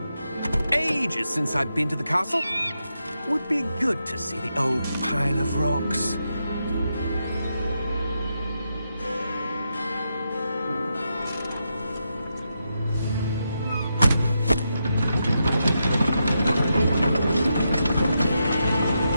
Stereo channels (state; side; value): inverted; both; correlation -0.84